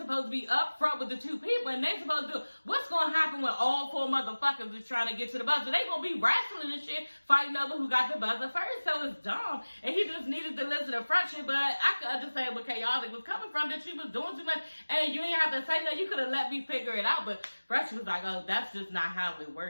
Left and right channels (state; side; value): inverted; both; correlation -1.00